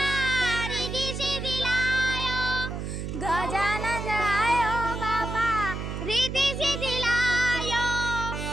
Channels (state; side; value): noise; right; hum, 5 dB below the sound